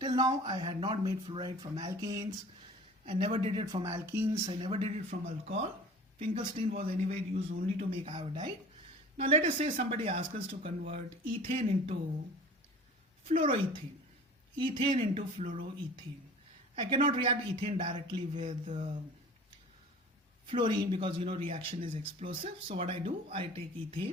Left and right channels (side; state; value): both; normal; correlation 0.43